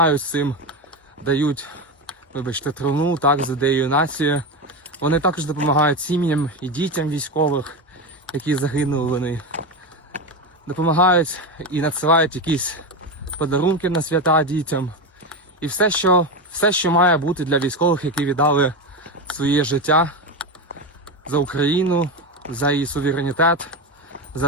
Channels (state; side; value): normal; both; correlation 0.16